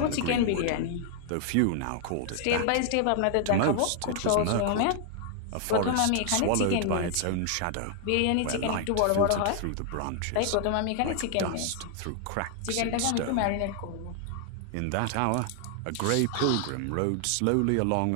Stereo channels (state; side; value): different; both; correlation 0.00